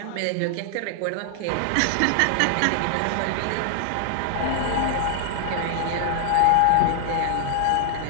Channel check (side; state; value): both; different; correlation 0.00